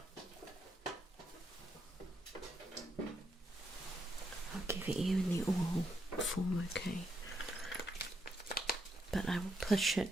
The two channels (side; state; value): both; normal; correlation 0.78